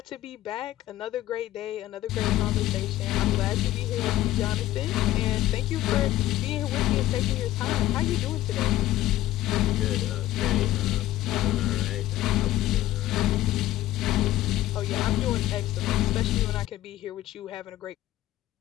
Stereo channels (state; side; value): quieter; right; 14.7 dB